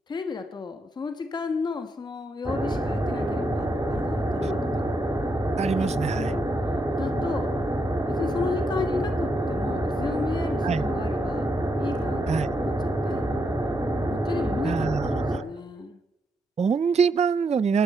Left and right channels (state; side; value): normal; both; correlation 0.80